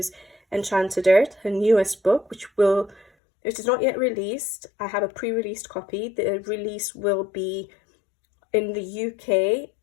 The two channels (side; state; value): right; drops out; at 3.1 s